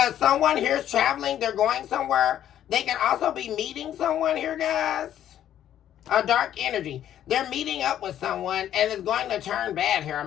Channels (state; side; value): quieter; right; 11.0 dB